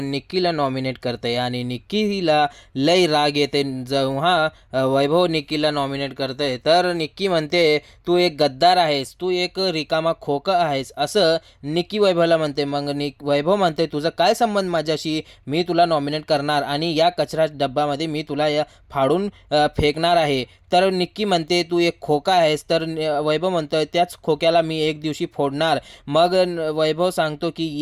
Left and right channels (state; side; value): identical; both; correlation 1.00